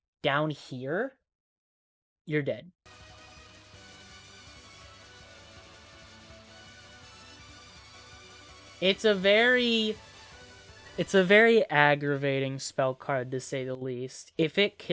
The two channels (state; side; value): identical; both; correlation 1.00